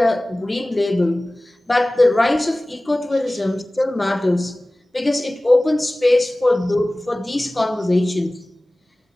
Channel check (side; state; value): both; normal; correlation 0.98